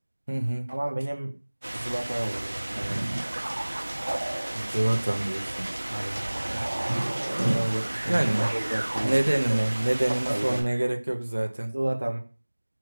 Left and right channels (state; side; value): inverted; both; correlation -1.00